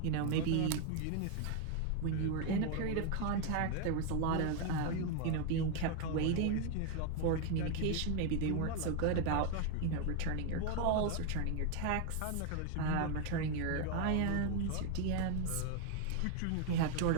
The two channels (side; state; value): both; different; correlation 0.01